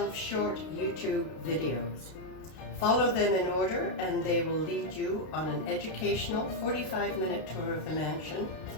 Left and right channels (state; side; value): late; right; 32 ms